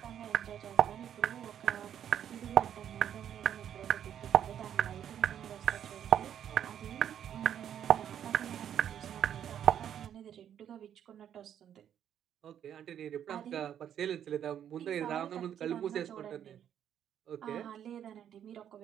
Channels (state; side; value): quieter; left; 9.6 dB